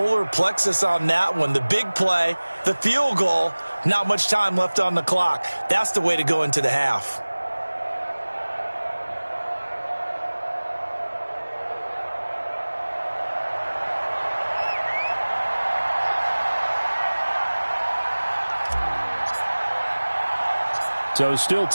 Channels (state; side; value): inverted; both; correlation -1.00